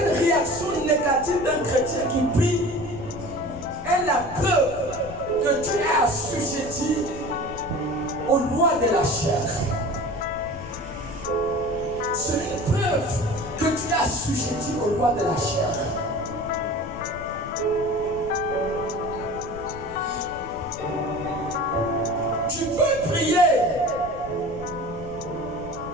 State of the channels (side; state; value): left; noise; rumble, 14 dB below the sound